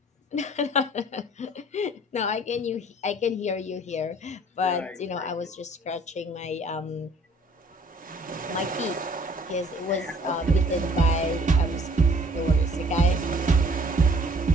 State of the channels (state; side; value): normal; both; correlation 0.56